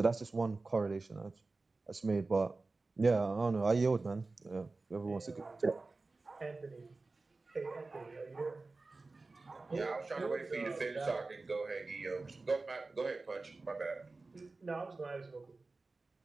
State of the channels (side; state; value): left; quieter; 3.6 dB